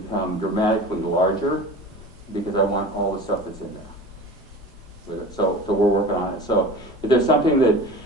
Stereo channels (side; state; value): both; normal; correlation 0.36